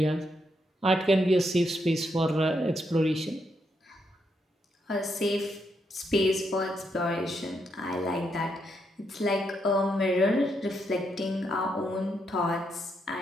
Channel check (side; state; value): both; normal; correlation 0.79